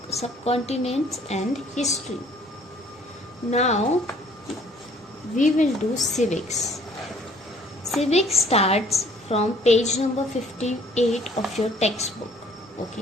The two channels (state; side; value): normal; both; correlation 0.58